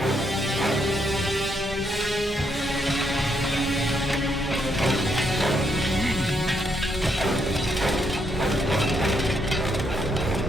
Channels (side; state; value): both; normal; correlation 0.76